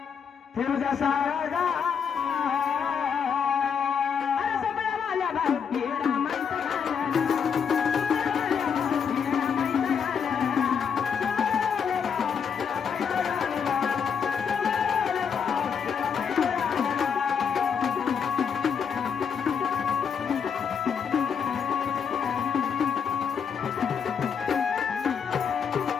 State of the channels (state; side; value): quieter; right; 7.0 dB